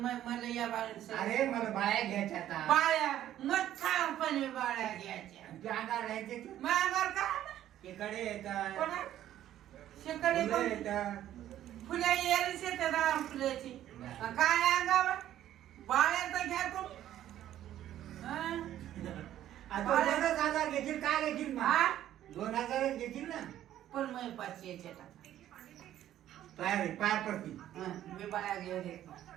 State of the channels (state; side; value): quieter; left; 12.2 dB